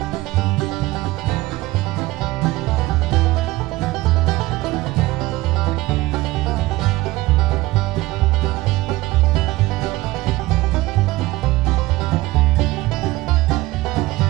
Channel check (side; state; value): left; quieter; 19.0 dB